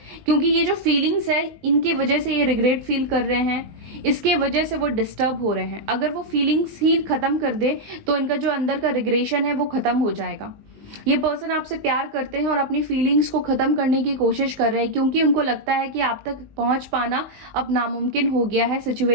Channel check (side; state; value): left; late; 19 ms